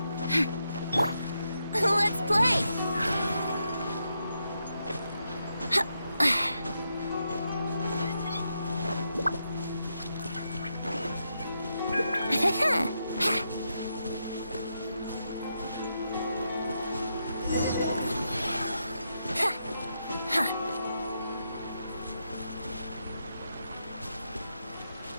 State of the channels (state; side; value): inverted; both; correlation -0.83